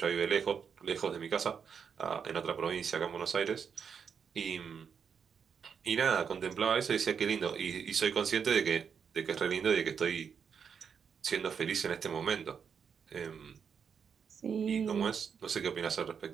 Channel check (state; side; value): quieter; left; 6.8 dB